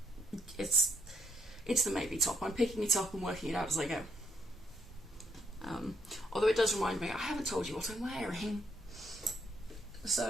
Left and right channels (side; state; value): both; normal; correlation 0.72